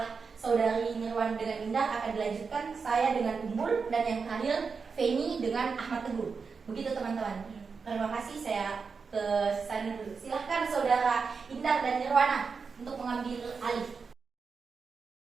saudari Nirwana dengan Indah akan dilanjutkan saya dengan Ummul, dan yang terakhir Feni dengan Ahmad Teguh. Begitu teman-teman. Terima kasih, saya ke sana dulu. Silahkan saudara Indah dan Nirwana untuk mengambil alih.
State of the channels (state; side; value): quieter; left; 5.2 dB